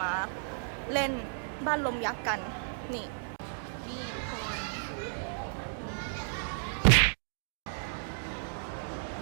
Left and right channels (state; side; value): silent; left; digital silence